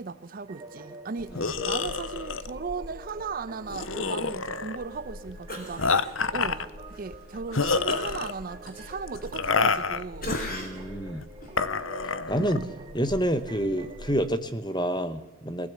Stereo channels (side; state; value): both; normal; correlation 0.14